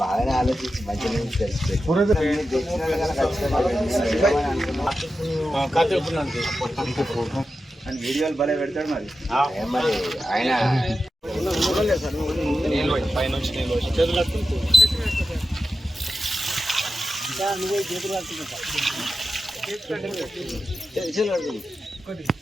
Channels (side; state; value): both; normal; correlation 0.91